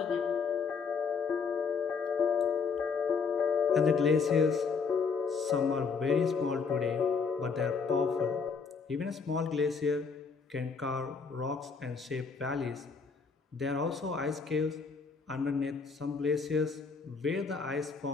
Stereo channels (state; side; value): quieter; right; 5.2 dB